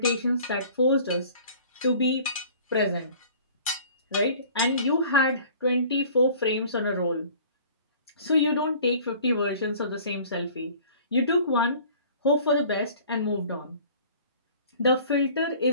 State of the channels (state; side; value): inverted; both; correlation -0.49